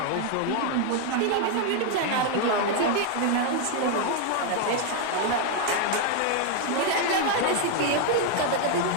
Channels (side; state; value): both; different; correlation 0.01